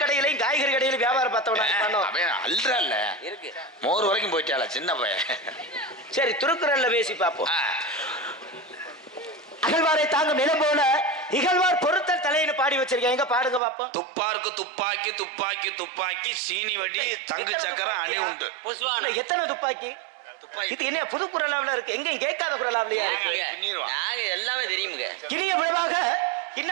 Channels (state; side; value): drops out; left; at 13.6 s